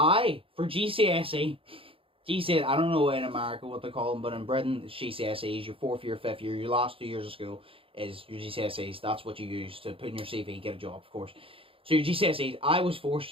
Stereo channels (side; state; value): left; late; 0.26 ms